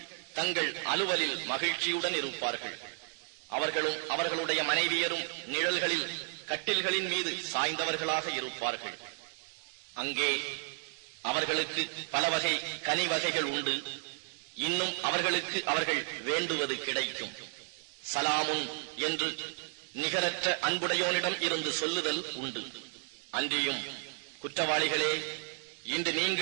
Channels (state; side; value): silent; left; 56 dB below the other